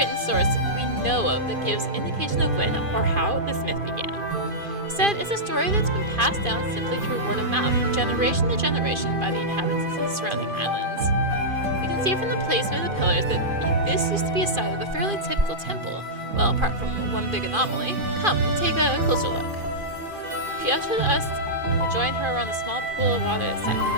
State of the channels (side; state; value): left; late; 2.5 ms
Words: source we know of that gives indication of when or how this myth began. Instead, it's a story that's been passed down simply through word of mouth from generation to generation by the inhabitants of the surrounding islands. You can see from the placement of the pillars that this used to be a site of a fairly typical temple, well, apart from one big anomaly. Come, take a closer look. She ushered us to join her around a small pool of water that sat in the